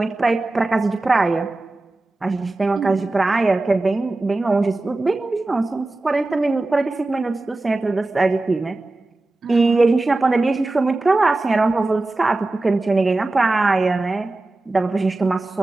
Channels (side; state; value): left; quieter; 3.0 dB